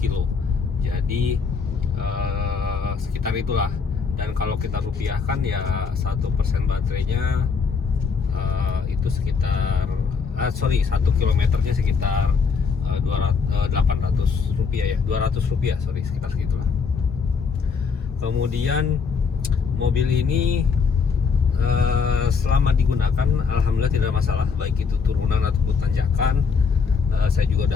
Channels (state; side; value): quieter; right; 5.5 dB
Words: kilo. Jadi sekitar itulah. Dan kalau kita rupiahkan ya 1% baterainya itu sekitar 1 kilometernya sekitar 800 rupiah ya, 200 rupiah, sekitar segitulah. Kemudian mobil ini selama digunakan alhamdulillah tidak ada masalah, baik itu turunan ataupun tanjakan. Saya juga